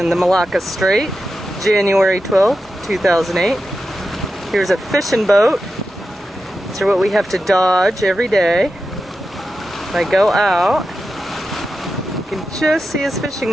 the Malacca Strait, January 12th, 2008. Here's a fishing boat. These are what we have to dodge every day. If I go out, you can just see his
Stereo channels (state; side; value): normal; both; correlation 0.90